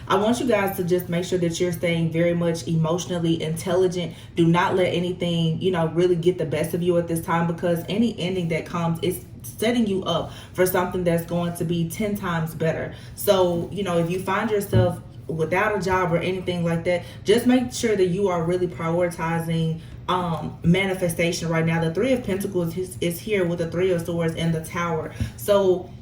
I want you guys to just make sure that you're staying very much emotionally intelligent. Do not let anything really get the best of you at this time, because any ending that comes is setting you up for something that's going to be 10 times better. So if you find yourself without a job or anything like that, just make sure that you are really prioritizing manifestation right now. The Three of Pentacles is here with the Three of Swords and the Tower. So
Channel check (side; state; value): both; identical; correlation 1.00